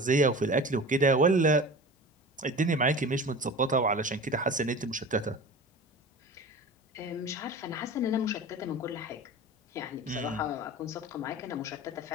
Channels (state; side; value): normal; both; correlation 0.36